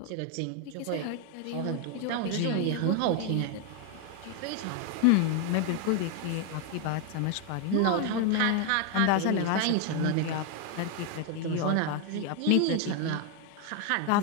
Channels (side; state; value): both; different; correlation 0.01